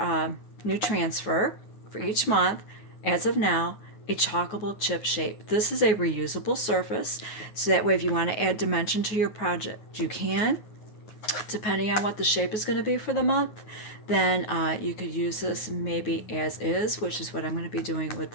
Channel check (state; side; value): late; right; 9.3 ms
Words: new transfer for each month, as of now, a chalkable chip shape. This is a reusable surface, so that way if you want to add dimension to your project, you can, depending on what the shape is going to be for the month. Then you could use this maybe as is, which is what I'm going to be doing with